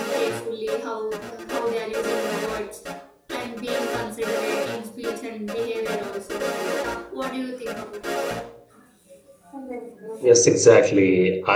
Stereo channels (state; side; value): identical; both; correlation 1.00